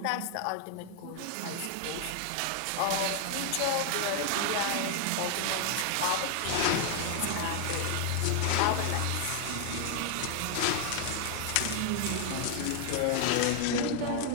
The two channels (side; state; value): both; different; correlation 0.00